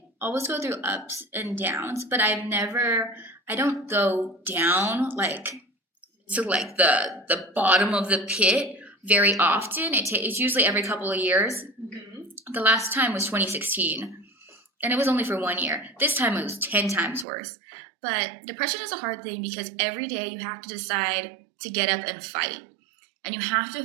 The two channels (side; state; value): left; drops out; at 17.2 s